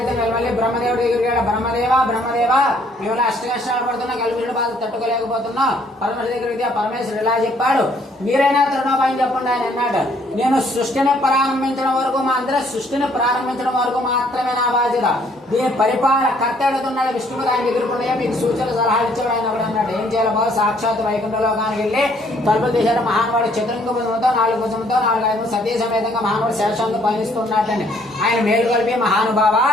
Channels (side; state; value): both; normal; correlation 0.64